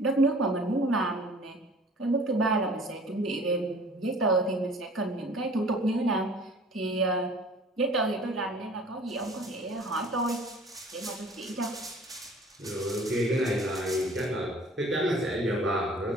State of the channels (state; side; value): normal; both; correlation 0.49